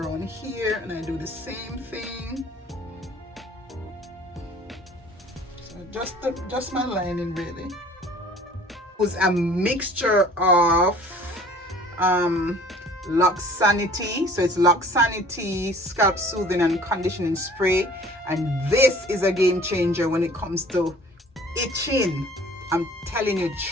here and I do the same thing. So just my lining really. It was a mixture of Locs Sanity. So it's Locs Sanity Scalp Soothing and Conditioning Spray, and this is a game changer when it comes to itching. I'm telling you,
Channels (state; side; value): normal; both; correlation 0.50